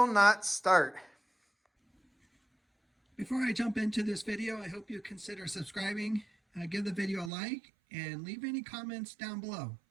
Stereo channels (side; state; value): left; drops out; at 7.3 s